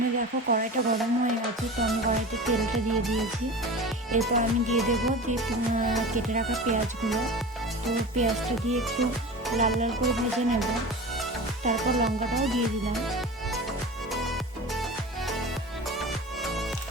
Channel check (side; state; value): both; normal; correlation 0.33